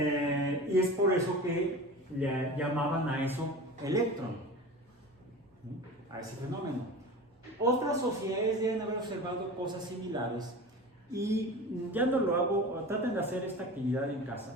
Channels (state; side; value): normal; both; correlation 0.33